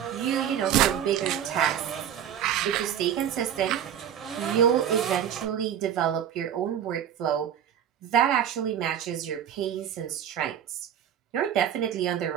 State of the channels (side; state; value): left; quieter; 9.5 dB